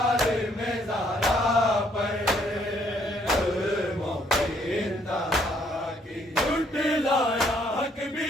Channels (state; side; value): normal; both; correlation 0.67